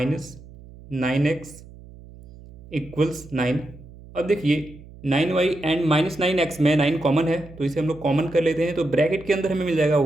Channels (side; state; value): right; noise; hum, 19 dB below the sound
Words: 9x इक्वल्स 9। अब देखिए, 9y एंड माइनस 9x में 9 कॉमन है तो इसे हम लोग कॉमन कर लेते हैं, तो ब्रैकेट के अंदर हमें मिल जाएगा